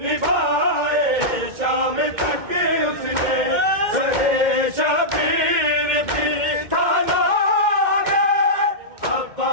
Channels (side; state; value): left; late; 2.1 ms